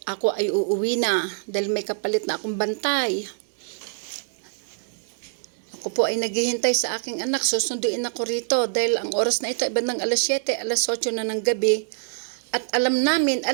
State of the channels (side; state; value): left; silent; digital silence